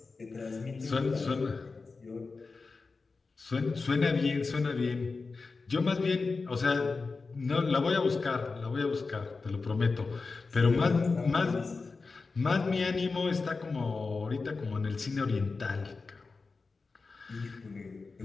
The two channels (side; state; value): right; quieter; 4.2 dB